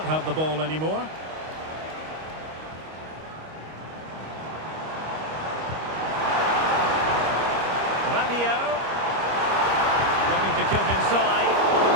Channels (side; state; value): left; late; 25 ms